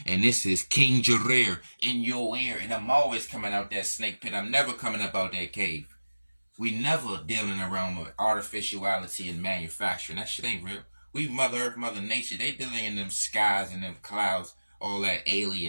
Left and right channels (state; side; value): inverted; both; correlation -1.00